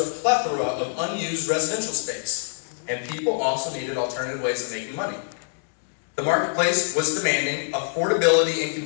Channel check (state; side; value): silent; right; digital silence